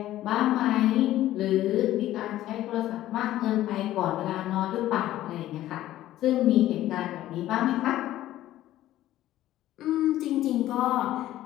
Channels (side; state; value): right; quieter; 14.1 dB